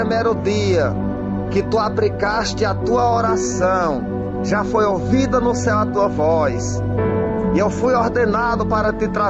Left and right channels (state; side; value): identical; both; correlation 1.00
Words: dia que tu aplicaste a tua oração, já foi ouvida no céu a tua voz, e eu fui ordenado para te